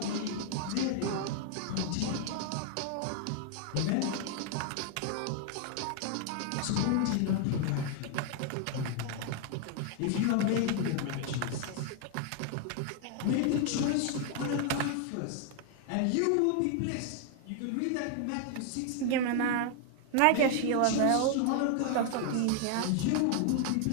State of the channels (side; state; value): both; different; correlation 0.00